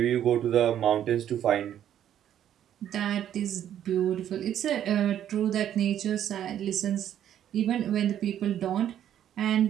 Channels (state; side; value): quieter; left; 10.6 dB